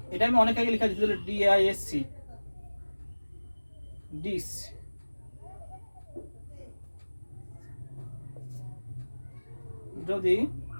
এটা আমি অনেক আগে লেখা দিয়েছিল, ডিআইএসসি ডিস। যদি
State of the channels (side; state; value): both; inverted; correlation -1.00